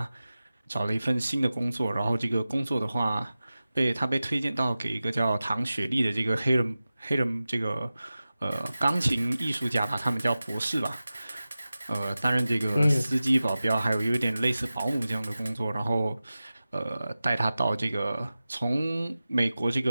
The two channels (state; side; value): inverted; both; correlation -0.96